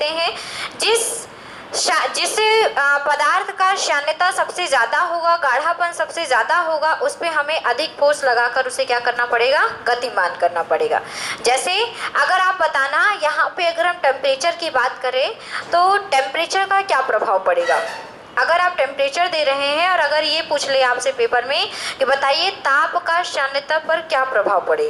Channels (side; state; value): both; identical; correlation 1.00